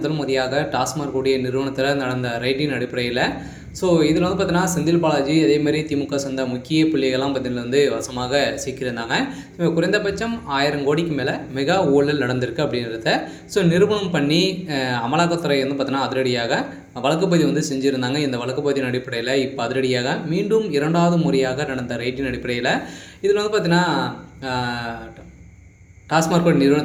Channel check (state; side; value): identical; both; correlation 1.00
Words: முறையாக டாஸ்மாக் கூடிய நிறுவனத்தில் நடந்த ரைட்டின் அடிப்படையில் இதில் பார்த்தீங்கன்னா செந்தில் பாலாஜி அதேமாதிரி திமுக சேர்ந்த முக்கிய புள்ளிகள்லாம் பார்த்தீங்கன்னா வசமாக சிக்கியிருந்தாங்க. குறைந்தபட்சம் 1000 கோடிக்கு மேலே மெகா ஊழல் நடந்திருக்கு அப்படின்றத நிரூபணம் பண்ணி அமலாக்கத்துறை பார்த்தீங்கன்னா அதிரடியாக வழக்குப்பதிவு செஞ்சுருந்தாங்க. இந்த வழக்குப்பதிவின் அடிப்படையில் இப்போ அதிரடியாக மீண்டும் 2வது முறையாக நடந்த ரைட்டின் அடிப்படையில் இதில் பார்த்தீங்கன்னா டாஸ்மாக்